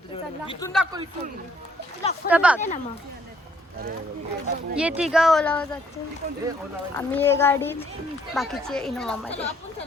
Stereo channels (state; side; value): normal; both; correlation 0.66